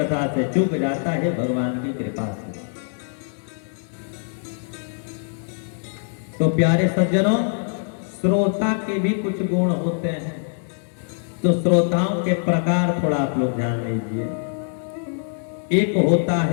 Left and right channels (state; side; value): silent; right; digital silence